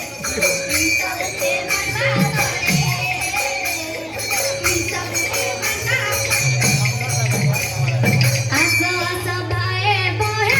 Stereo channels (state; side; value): identical; both; correlation 1.00